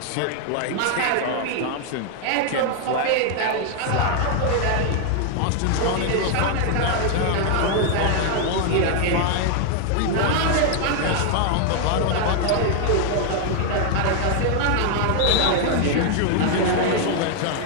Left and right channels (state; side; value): different; both; correlation 0.00